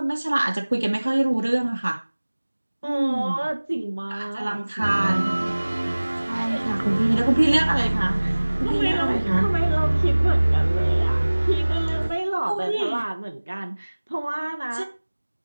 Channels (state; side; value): inverted; both; correlation -1.00